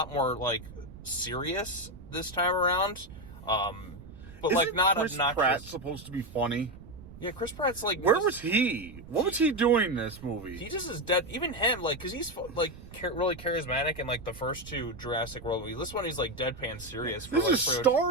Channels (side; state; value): right; noise; rumble, 17 dB below the sound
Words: more like serious this time around. But like not Chris obnoxious. Pratt's supposed to be funny. Yeah, Chris Pratt's like... Where was he? What was he doing in this movie? He just is dead. Even him, like, because he's, like, really charismatic in, like, the first two Jurassic World movies. This one, he's, like, deadpan serious. This is